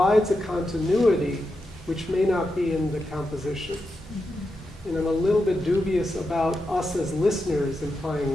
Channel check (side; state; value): both; normal; correlation 0.87